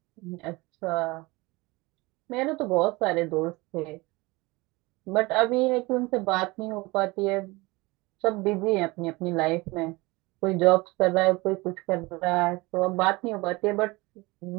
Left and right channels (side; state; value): left; quieter; 23.2 dB